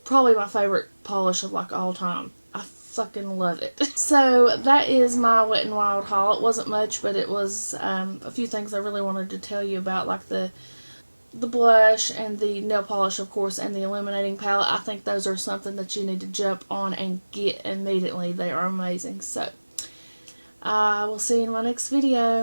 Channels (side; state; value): both; inverted; correlation -1.00